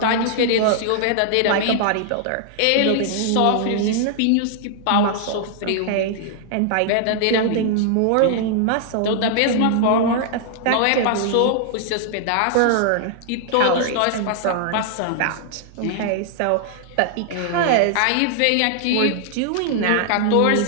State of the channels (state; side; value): different; both; correlation -0.01